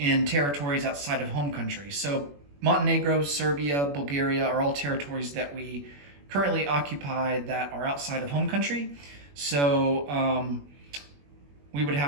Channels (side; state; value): left; late; 21 ms